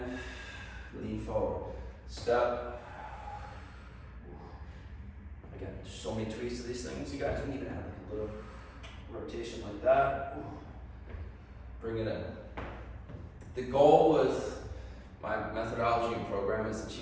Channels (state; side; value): identical; both; correlation 1.00